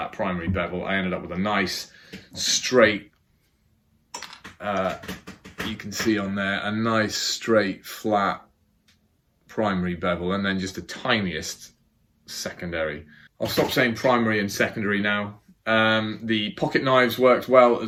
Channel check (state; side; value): identical; both; correlation 1.00